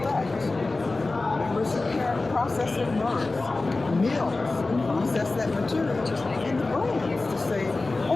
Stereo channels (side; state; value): right; quieter; 3.3 dB